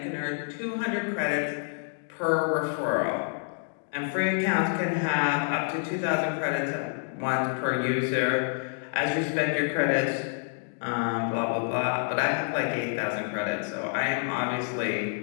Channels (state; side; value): silent; right; 59 dB below the other